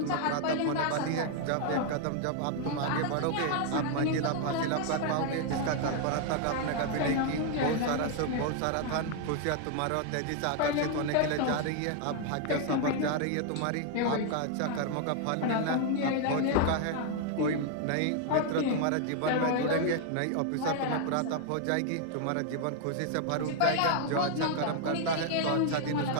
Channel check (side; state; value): both; different; correlation 0.00